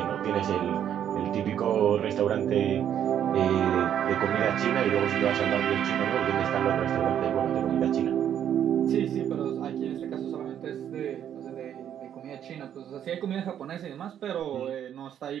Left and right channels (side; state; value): left; quieter; 9.8 dB